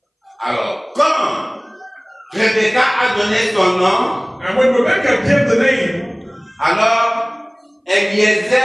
Alors, quand Rebecca a donné son nom, And when Rebecca gave the name, alors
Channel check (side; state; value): both; identical; correlation 1.00